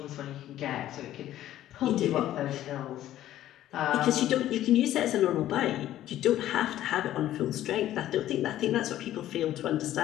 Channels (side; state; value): right; quieter; 13.1 dB